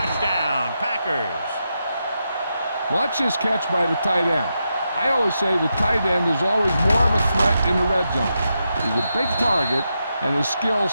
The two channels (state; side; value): inverted; both; correlation -0.86